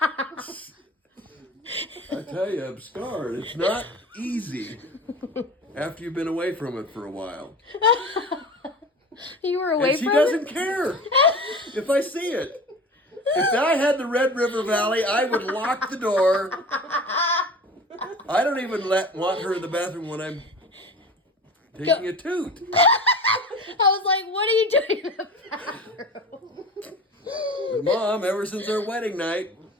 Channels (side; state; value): both; normal; correlation 0.35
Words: I tell you, I'm scarred. It's not easy after you've been away from it for a while. You were away And she from doesn't it? care if I see it. If I had the Red River Valley, I would lock the door. I don't even want her in the bathroom when I'm taking a toot. I was like, what are you doing in the bathroom? Mom, ever since our wedding night.